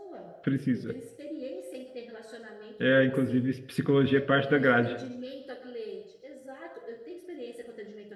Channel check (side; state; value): both; identical; correlation 1.00